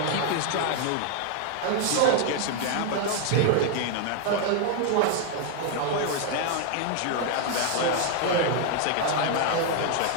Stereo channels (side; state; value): both; different; correlation 0.00